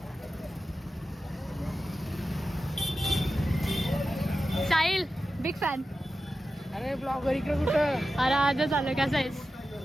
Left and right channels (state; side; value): normal; both; correlation 0.92